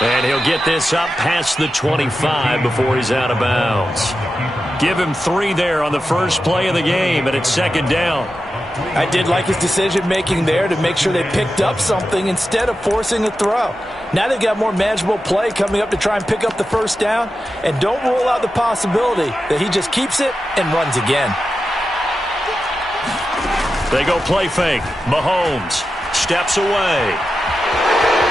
And he'll get this up past the 25 before he's out of bounds. Give him 3 there on the first play of the game, and it's second down. I did like his decision-making there to make sure they picked up something instead of forcing a throw. Now they've got more manageable play coming up to try and pick up the first down, and don't rule out the possibility that he just keeps it and runs again. They go play fake. Mahomes steps away.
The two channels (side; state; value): both; normal; correlation 0.91